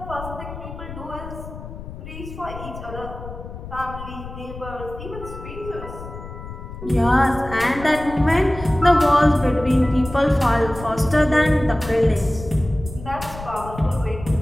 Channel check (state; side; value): noise; left; rumble, 12 dB below the sound